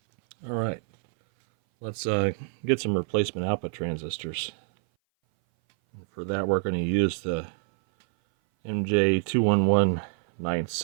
All right, let's get some replacement output transistors. For that, we're going to use the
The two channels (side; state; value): left; silent; 58 dB below the other